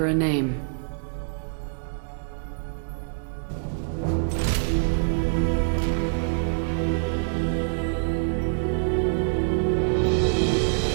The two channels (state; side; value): silent; left; digital silence